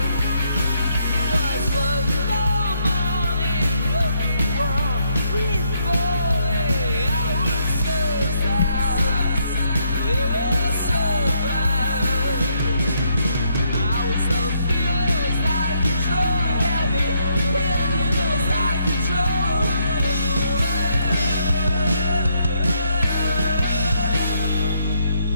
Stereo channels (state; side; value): inverted; both; correlation -0.74